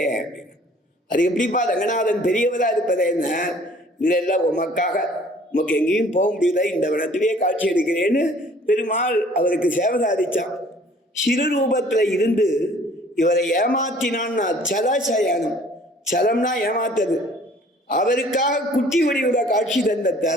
அப்படின்னு. அது எப்படிப்பா ரங்கநாதன் பெரியவரா இருப்பது என்ன, இல்ல உமக்காக உமக்கு எங்கேயும் போக முடியல, இந்த வனத்திலேயே காட்சி அளிக்கிறேன்னு பெருமாள் அவருக்கு சேவை சாதிச்சான். சிறு ரூபத்துல இருந்து இவரை ஏமாத்தினான்னா சலசயனம், சலம்னா ஏமாத்தது. அவருக்காக குட்டி வடிவுல காட்சி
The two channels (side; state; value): both; normal; correlation 0.54